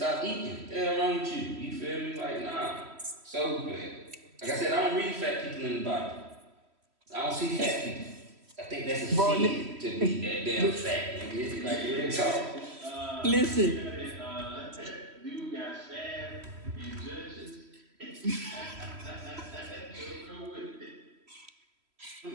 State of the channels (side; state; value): left; late; 3.1 ms